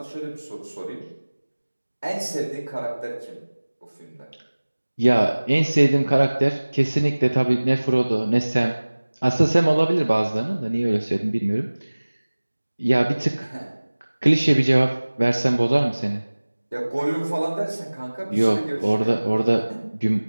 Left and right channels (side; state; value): both; inverted; correlation -1.00